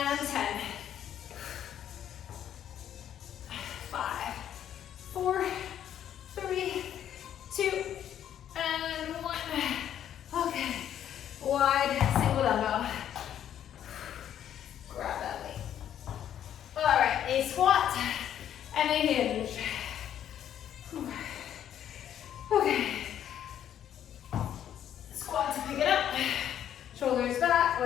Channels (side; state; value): right; quieter; 10.3 dB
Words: 10. 5, 4, 3, 2, and 1. Okay. Wide single dumbbell. Grab that weight. All right, a squat and a hinge. Okay. Squat to pick it up. Shoulders back.